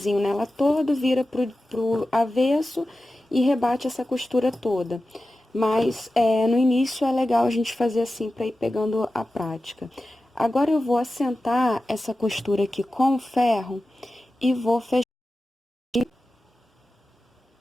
nela todo, vira pro avesso e rebate essa costura toda. Mas, no início, é legal a gente fazer assim, para ir pegando a prática. Agora, eu vou assentar essa costura aqui com o ferro e vou fechar.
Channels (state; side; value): normal; both; correlation 0.94